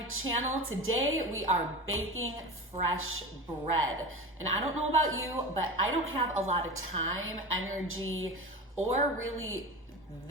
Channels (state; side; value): normal; both; correlation 0.28